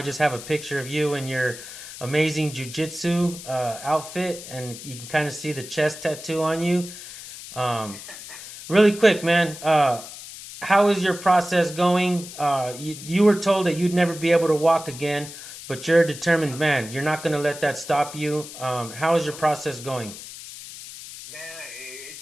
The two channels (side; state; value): left; noise; hiss, 13 dB below the sound